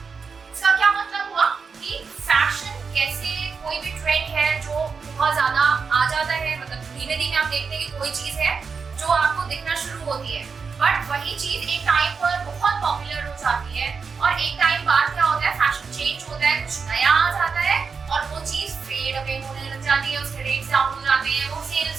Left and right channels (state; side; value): quieter; left; 5.3 dB